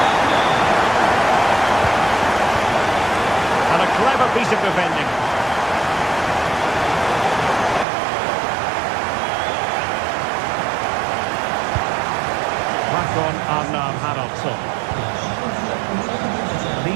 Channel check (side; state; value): left; drops out; at 7.9 s